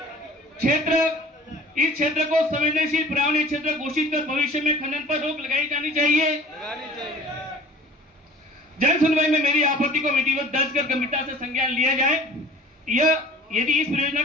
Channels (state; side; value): normal; both; correlation 0.46